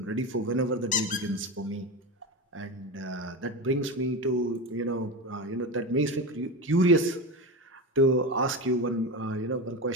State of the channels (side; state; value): both; normal; correlation 0.21